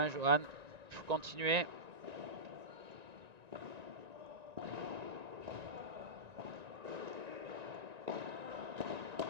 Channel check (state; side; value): late; left; 1.9 ms